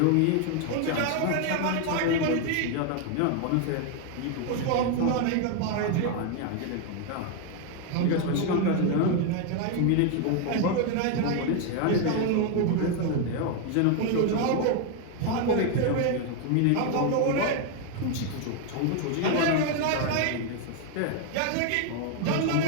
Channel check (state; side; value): different; both; correlation 0.01